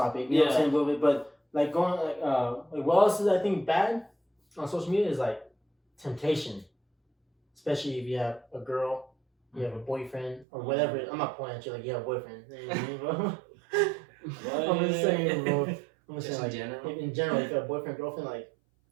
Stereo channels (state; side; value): drops out; left; at 10.5 s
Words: You know what I'm saying? A little bit, but like going like what else is I think bad on social media is like temptation, especially if you have a girl, you have a boyfriend or whatever. I'm not pointing at you like you have a boyfriend. You know what I mean, bro? I'm just saying, bro. I'm just saying, like in general, if you have a boyfriend, girlfriend, like